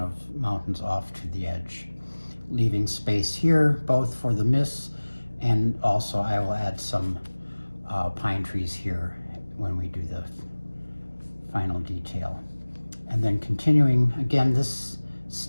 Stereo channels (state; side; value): inverted; both; correlation -1.00